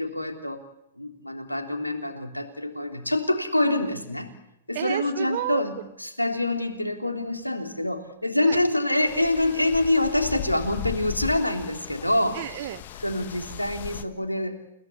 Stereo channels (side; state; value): both; inverted; correlation -0.85